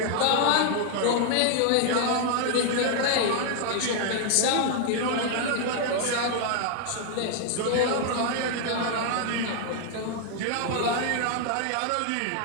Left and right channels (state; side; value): different; both; correlation 0.00